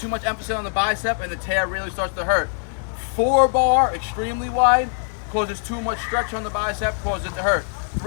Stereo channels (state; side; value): silent; right; 64 dB below the other